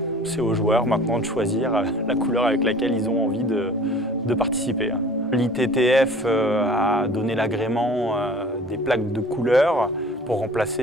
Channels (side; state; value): both; normal; correlation 0.46